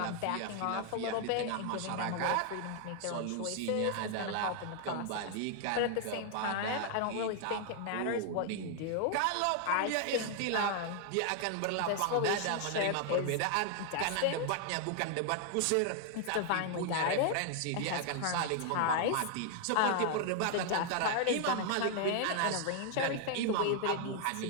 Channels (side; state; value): both; different; correlation 0.00